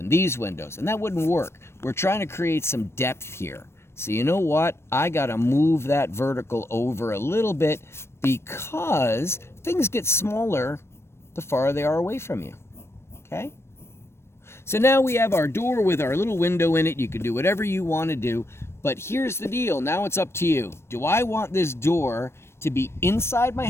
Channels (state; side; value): late; right; 0.12 ms